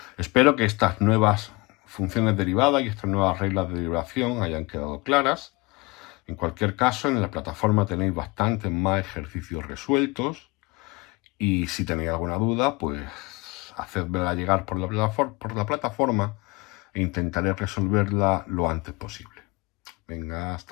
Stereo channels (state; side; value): quieter; right; 25.0 dB